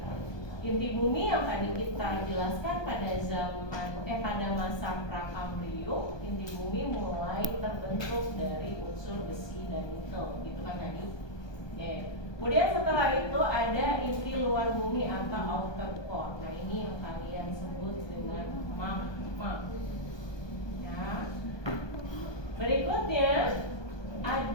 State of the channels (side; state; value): right; late; 1.2 ms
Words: Inti bumi yang tadi kita jelaskan pada pada masa Prakambrium, inti bumi mulai terbentuk dari unsur besi dan nikel, gitu kan tadi. Oke. Kemudian setelah itu ada inti luar bumi atau outer core. Nah ini yang kalian sebut dengan magma. Ya. Berikutnya